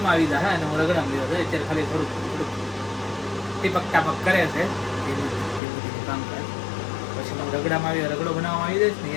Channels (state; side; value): drops out; right; at 5.6 s